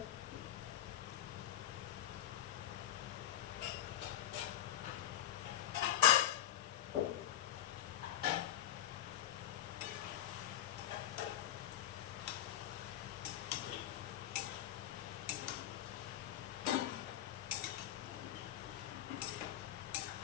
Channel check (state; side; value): quieter; right; 12.3 dB